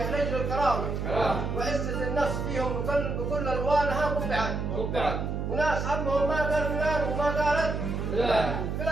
رجل الكرامة وعزة النفس فيهم بكل ألوانها قبعت. وناس همهم ما قال فلان وما قالت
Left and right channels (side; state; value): right; noise; hum, 2 dB below the sound